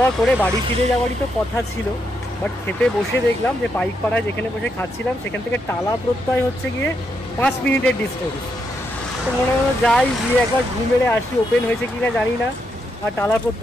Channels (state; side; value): normal; both; correlation 0.80